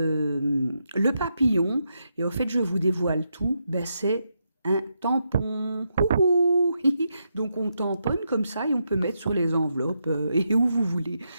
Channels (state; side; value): inverted; both; correlation -0.83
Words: papillon. Et au fait, je vous dévoile tout, ben c'est un tampon. Ouhou. Donc on tamponne comme ça et on peut mettre sur les enveloppes et où vous voulez.